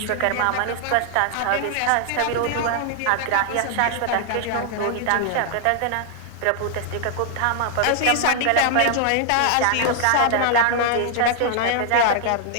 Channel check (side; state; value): both; different; correlation 0.00